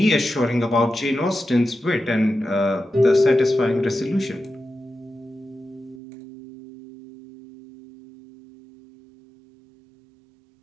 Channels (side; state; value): left; drops out; at 6.0 s